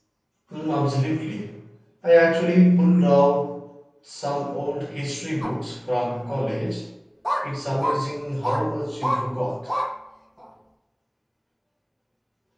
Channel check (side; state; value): both; identical; correlation 1.00